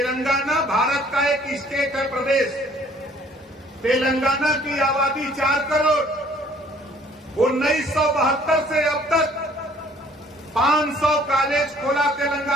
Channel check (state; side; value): normal; both; correlation 0.57